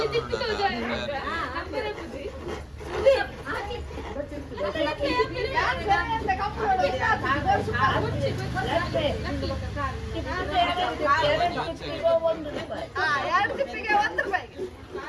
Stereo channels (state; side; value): identical; both; correlation 1.00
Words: ತಿಪ್ಪಿತು ಅಂದ್ರೆ ಬುದ್ಧಿ ಎರಡು ತಿಪ್ಪಿಗೆ 1 ರೂಪಾಯಿ